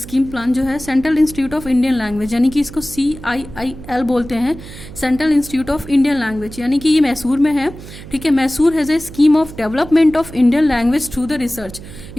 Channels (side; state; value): right; noise; hum, 15 dB below the sound